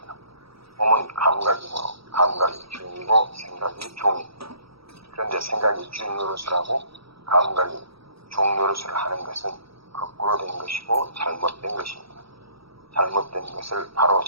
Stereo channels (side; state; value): left; late; 0.76 ms